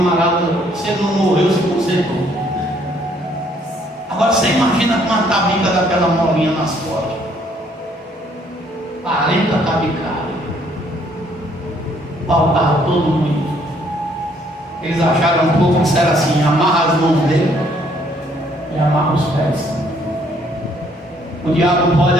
se ele não morreu, se consertou. Agora você imagina com uma tabica daquela molinha nas costas. 40 tabicadas. Paulo estava todo muito. Eles acharam um pouco que disseram assim: amarra as mãos dele e amarra os pés. O diabo pode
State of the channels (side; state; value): both; normal; correlation 0.65